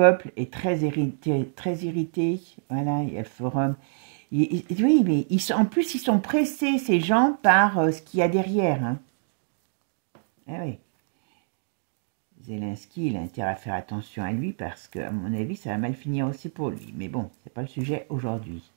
est très irrité. Voilà, il y a le forum. Oui, mais en plus, ils sont pressés, ces gens, par ce qu'il y a derrière. Hein. Eh oui. Zelensky, il a intérêt à faire attention à lui parce que, à mon avis, ça va mal finir aussi pour lui. Mais bon, c'est pas le sujet aujourd'hui.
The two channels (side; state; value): left; silent; digital silence